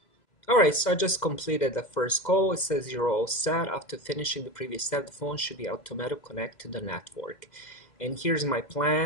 Alright, so I just completed the first call. It says you're all set. After finishing the previous step, the phone should be automatically connect to the network. And here's my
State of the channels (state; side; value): late; right; 2.1 ms